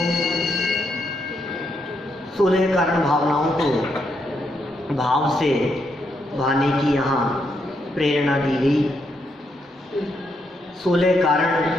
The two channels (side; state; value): both; normal; correlation 0.79